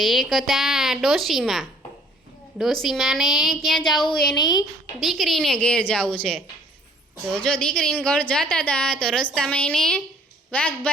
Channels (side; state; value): both; normal; correlation 0.57